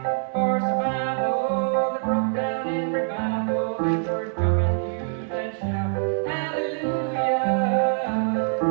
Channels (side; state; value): left; silent; 61 dB below the other